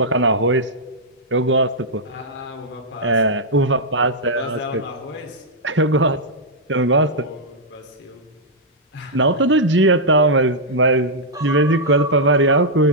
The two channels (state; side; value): normal; both; correlation -0.06